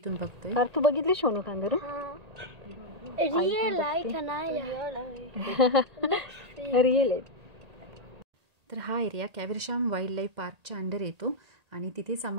बघतोय. तू बघितली सोनू कांगारू? रिअल आहे. तर हा एरिया कॅव्हरशाम वाईल्ड लाईफ पार्कच्या अंडर येतो आणि तिथेच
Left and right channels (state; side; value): late; left; 1.8 ms